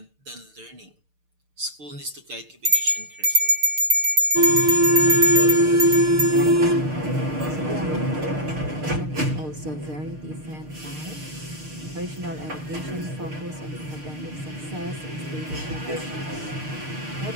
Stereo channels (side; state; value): left; late; 6.6 ms